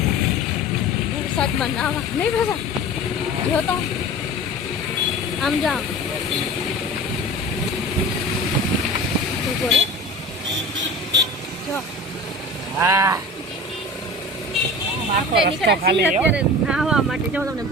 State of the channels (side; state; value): both; normal; correlation 0.36